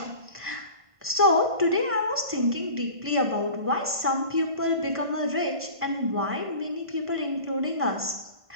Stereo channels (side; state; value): left; late; 1.5 ms